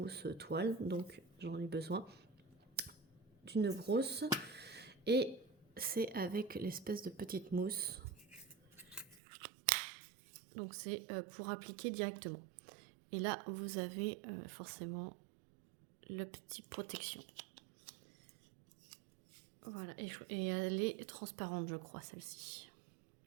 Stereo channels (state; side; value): drops out; left; at 9.2 s